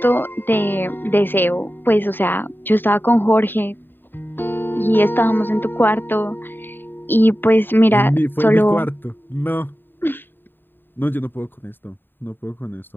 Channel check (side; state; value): right; late; 0.095 ms